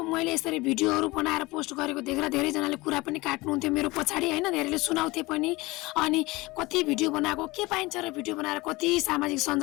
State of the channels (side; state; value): right; quieter; 21.9 dB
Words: मैले यसरी भिडियोहरू बनाएर पोस्ट गरेको देखेर धेरैजनाले कुरा पनि काट्नुहुन्थ्यो मेरो पछाडि, होइन। धेरैले सुनाउँथे पनि। अनि कति भिडियो बनाएको के पाइन्छ र भिडियो बनाएर कति सामाजिक